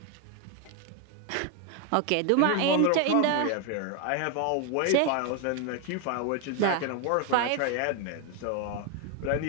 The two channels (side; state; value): both; different; correlation 0.01